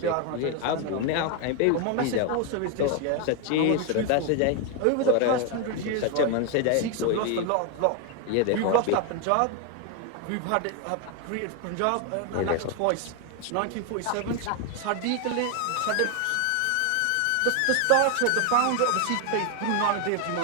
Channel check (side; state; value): both; different; correlation 0.01